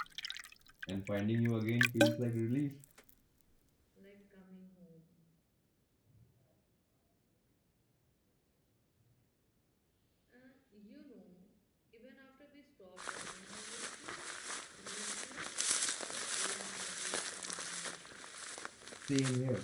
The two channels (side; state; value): both; identical; correlation 1.00